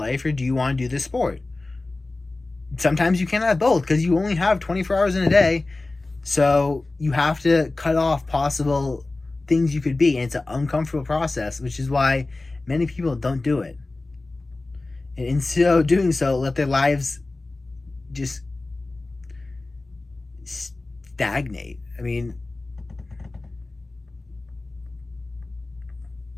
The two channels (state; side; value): quieter; right; 3.2 dB